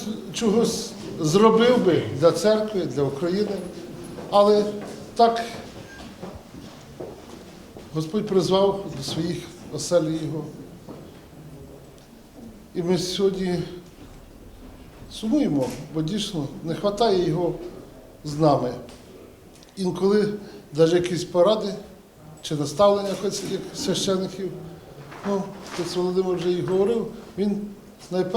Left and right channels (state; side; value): identical; both; correlation 1.00